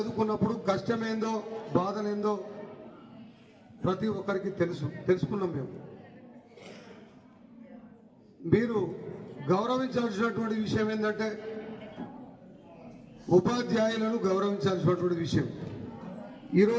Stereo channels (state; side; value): identical; both; correlation 1.00